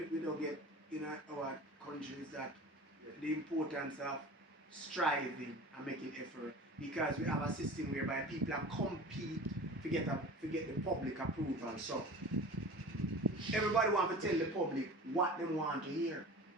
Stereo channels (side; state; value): both; normal; correlation 0.37